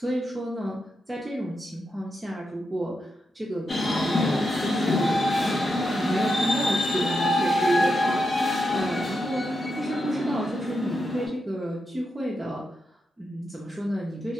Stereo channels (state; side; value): normal; both; correlation 0.86